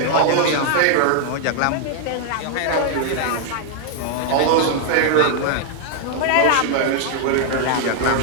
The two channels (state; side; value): different; both; correlation 0.00